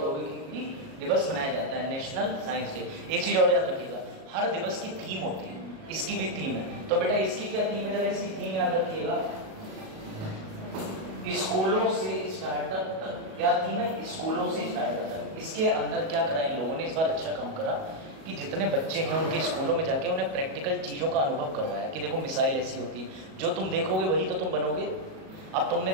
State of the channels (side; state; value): left; late; 37 ms